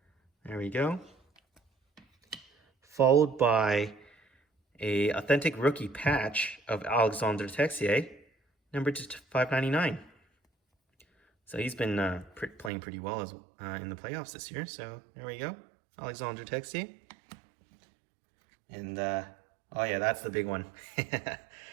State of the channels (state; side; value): drops out; left; at 12.7 s